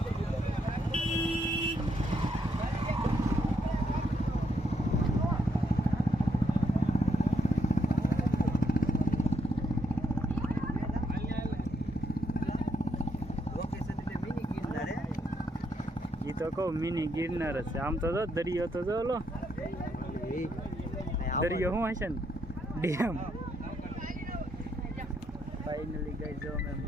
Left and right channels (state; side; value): normal; both; correlation 0.77